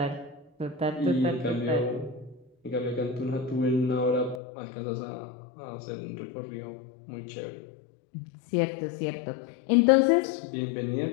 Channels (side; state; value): right; drops out; at 4.4 s